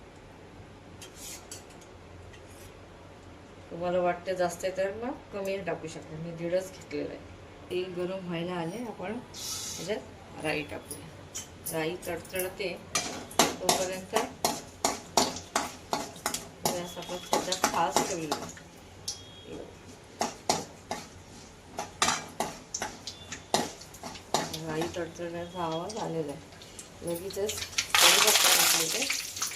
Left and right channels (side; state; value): both; identical; correlation 1.00